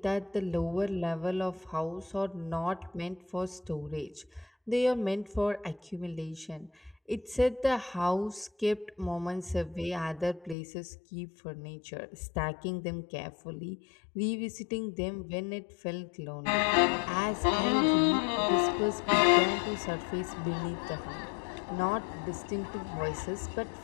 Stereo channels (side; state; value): right; drops out; at 10.6 s